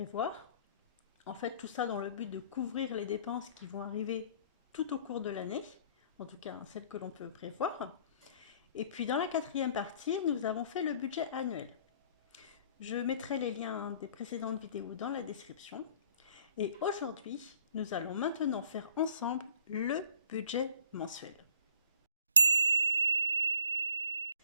En fait, tout ça dans le but de couvrir les dépenses qui vont arriver tout au cours de l'année, en tout cas celles que l'on peut prévoir. Et puis dans la quatrième partie, nous avons fait le budget annuel. Je mettrai les liens des précédentes vidéos dans la description. Et aujourd'hui, nous allons maintenant faire ensemble le budget mensuel.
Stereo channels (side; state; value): both; inverted; correlation -0.58